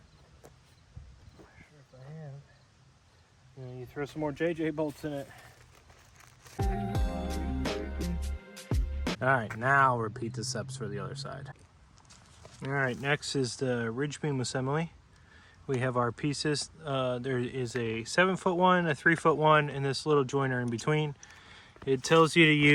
not sure if I have, you throw some more JJ bolts in it. Alright, now repeat the steps for the other side. Alright, next is the ridge beam assembly. We have our pieces. There is a 7-foot one, a 3-foot one, and this little joiner in between. It tells you to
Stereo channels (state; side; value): identical; both; correlation 1.00